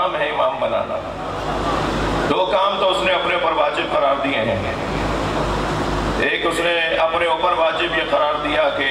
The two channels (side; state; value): both; identical; correlation 1.00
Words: है इमाम बनाना। 2 काम तो उसने अपने ऊपर वाजिब करार दिए हैं। एक उसने अपने ऊपर वाजिब ये करार दिया कि